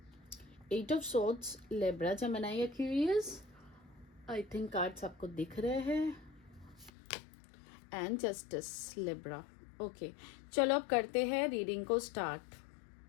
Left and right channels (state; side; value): drops out; right; at 6.9 s